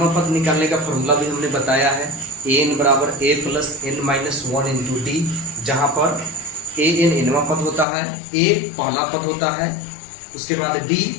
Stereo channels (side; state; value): right; drops out; at 7.9 s